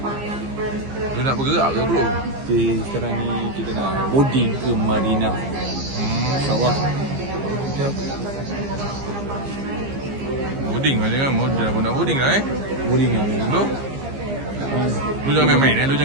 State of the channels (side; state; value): left; late; 15 ms